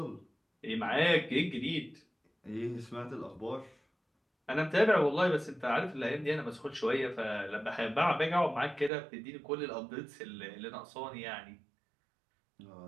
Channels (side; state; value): left; drops out; at 8.9 s